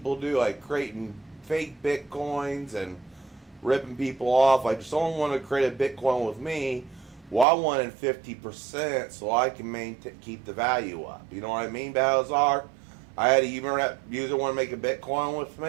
do, like creating fake Bitcoins and ripping people off, I just only want to create a Bitcoin with me. Well, I wanted 50% so I can keep the value up. You know what I mean, Balazar? I had a user want to make a Bitcoin with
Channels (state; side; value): drops out; left; at 7.5 s